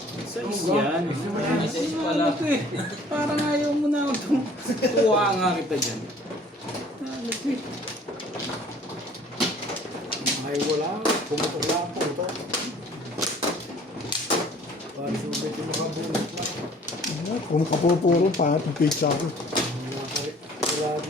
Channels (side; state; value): both; normal; correlation 0.53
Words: Sais yan. Sais pala. Ano to eh? Parang ayaw mo na ako. Tuwa nga kita dyan. Ano to eh? Ay wala, pumutok lang po ito. Parang subit yung nakabunot na. Kung kapupuro pa, pizza ako. Wala